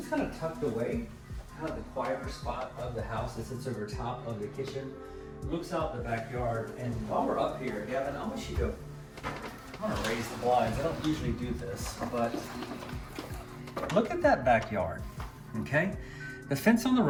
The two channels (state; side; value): identical; both; correlation 1.00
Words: kind of tucked away, kind of the quieter spot of the house. It sits over top of the kitchen, looks out the backyard. And while we're up here, Gavin, I want you to, I'm gonna raise the blinds. I don't usually do this, but look at that backyard, okay? The fence on the